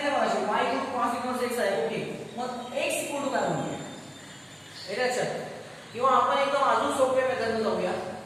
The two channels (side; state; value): both; identical; correlation 1.00